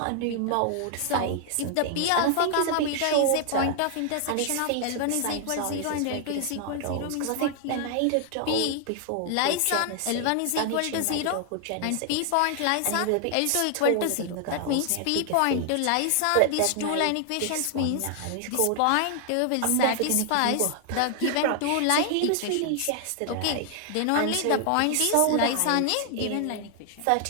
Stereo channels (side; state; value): both; different; correlation 0.00